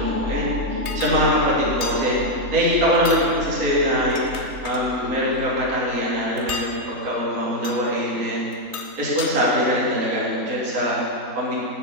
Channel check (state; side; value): late; left; 3.3 ms